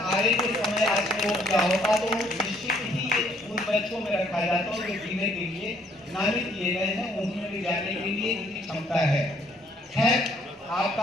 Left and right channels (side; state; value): both; normal; correlation 0.65